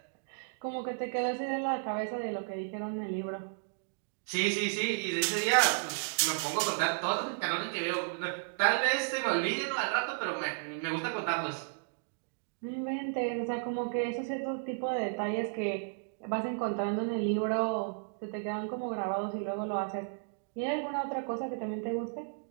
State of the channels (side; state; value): left; silent; digital silence